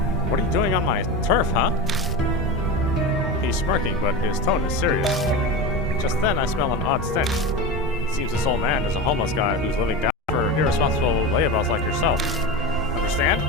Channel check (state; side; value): normal; both; correlation 0.23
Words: What are you doing on my turf, huh? He's smirking, but his tone is serious. Just then, I smell an odd stench. It seems this old man is a homeless guy who's living down for irresponsible layabouts like yourself. Understand?